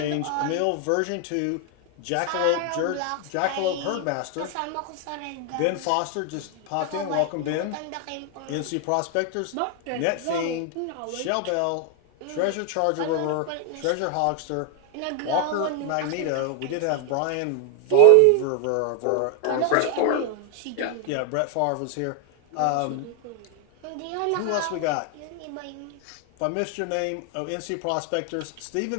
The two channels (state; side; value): different; both; correlation 0.00